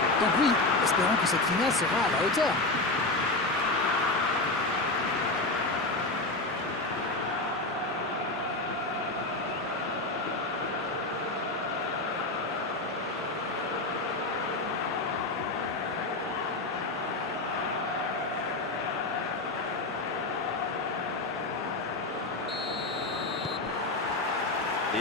Donc oui, espérons que cette finale sera à la hauteur.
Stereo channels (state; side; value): quieter; right; 3.1 dB